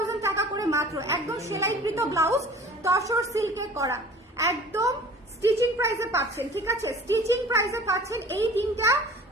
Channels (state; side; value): normal; both; correlation 0.45